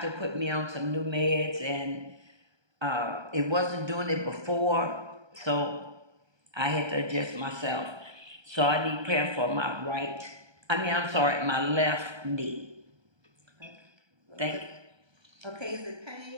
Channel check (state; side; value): late; left; 1.3 ms